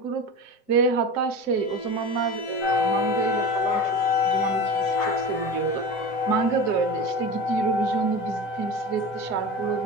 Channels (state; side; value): late; right; 7.7 ms